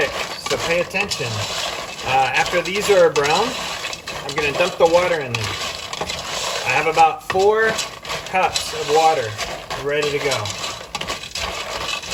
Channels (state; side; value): identical; both; correlation 1.00